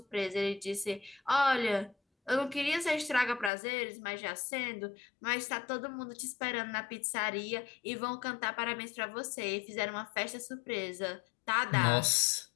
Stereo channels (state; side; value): drops out; right; at 3.5 s